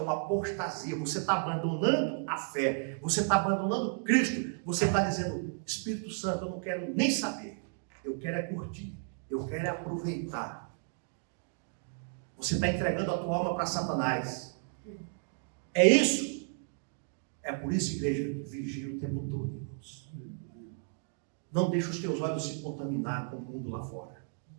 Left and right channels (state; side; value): silent; left; 56 dB below the other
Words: uma apostasia. Você está abandonando a fé, você está abandonando Cristo, você está dizendo: Espírito Santo, eu não quero nem saber, eu quero é curtir, eu quero é aproveitar. Você está entregando a tua alma para Satanás. É isso. É por isso, igreja, vigia o tempo todo, irmãos. Não deixe os teus olhos se contaminar com o mundo lá fora.